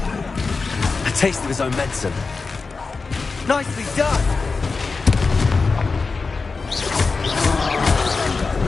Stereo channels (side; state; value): right; quieter; 4.3 dB